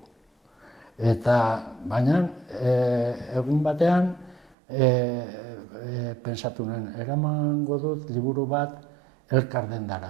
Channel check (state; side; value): drops out; left; at 4.5 s